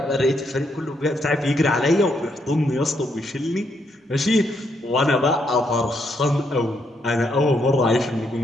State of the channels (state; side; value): normal; both; correlation 0.76